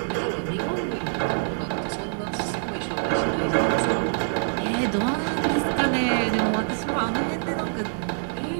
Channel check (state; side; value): silent; left; 62 dB below the other